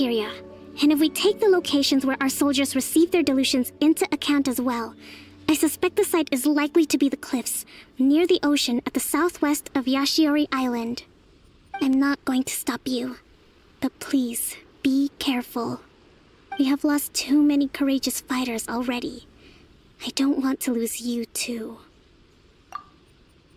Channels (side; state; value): both; identical; correlation 1.00